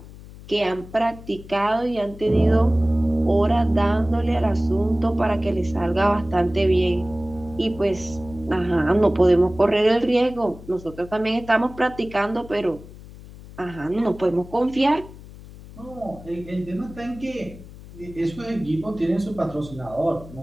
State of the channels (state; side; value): noise; left; hum, 17 dB below the sound